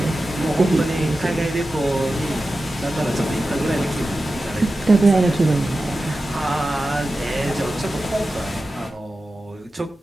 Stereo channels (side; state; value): both; normal; correlation 0.93